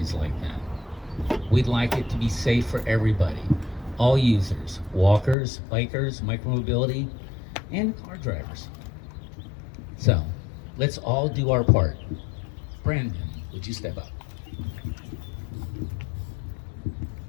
like that. We'd like it to be safe for everybody, all users, walkers, bikers, micromobility, and car drivers. So let's all do our part. Brandon, would you step up?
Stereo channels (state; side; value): drops out; right; at 5.4 s